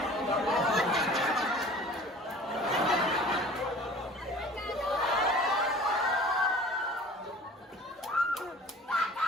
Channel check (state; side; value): normal; both; correlation 0.45